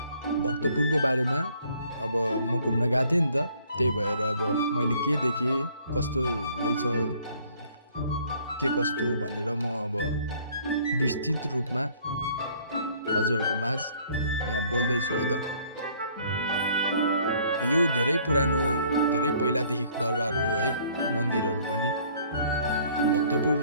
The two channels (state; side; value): inverted; both; correlation -0.60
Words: भक्तपुरको बारेमा अब म घुम्न गएको थिएँ नि त, त्यही भएर अब मैले के देखेँ, कस्तो रहेछ, के कस्तो भनेर म अब विस्तृत रूपमा हजुरहरूको माझ यहाँ बोल्दैछु है त। यो धेरै पुरानो, धेरै पहिलादेखिको दरबार हो है, मन्दिरहरू पनि। अनि भक्तपुर